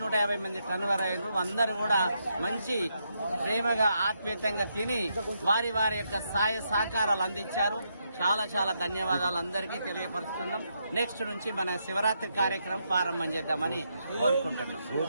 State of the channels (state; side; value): inverted; both; correlation -0.80